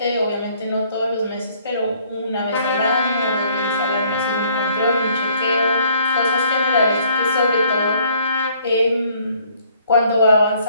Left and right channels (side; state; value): both; inverted; correlation -0.62